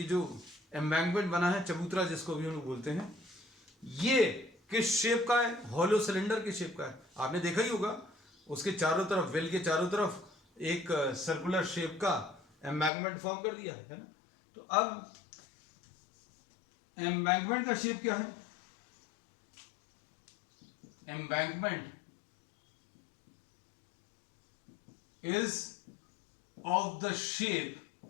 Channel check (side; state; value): right; drops out; at 12.9 s